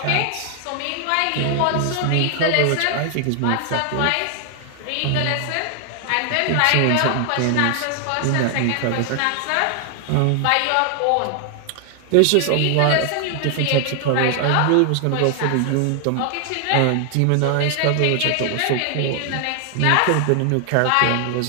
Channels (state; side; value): different; both; correlation 0.00